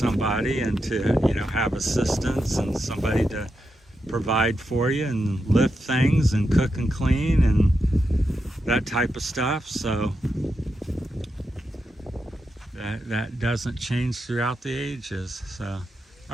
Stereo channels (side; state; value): both; normal; correlation 0.86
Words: and to, you know, have assistance and somebody to provide for you and lift things and cook and clean and that type of stuff. So that doesn't change throughout the ages. So,